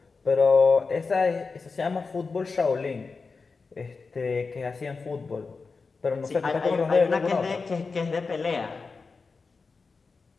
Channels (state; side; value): quieter; right; 4.5 dB